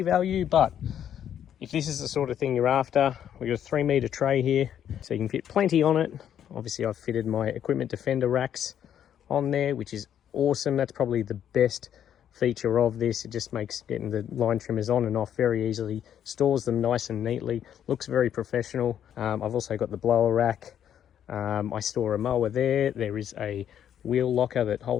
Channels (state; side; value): quieter; right; 9.7 dB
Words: value, but if this is the sort of thing you're after, we've got a 3-meter tray here, so you can fit plenty on it. Obviously I've fitted my equipment defender racks on there, which is awesome. That's probably the best feature of this. It just makes getting the line trimmers on and off very easily, stores them nice and neatly, looks very professional. I've also got the blower rack. I store a mower there. There is a wheel locker that